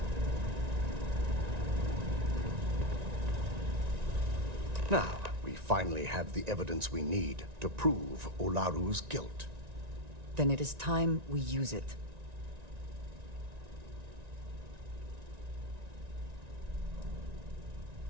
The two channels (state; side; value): late; left; 1.9 ms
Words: Now, we finally have the evidence we need to prove Ularu's guilt. Then it is time we use it.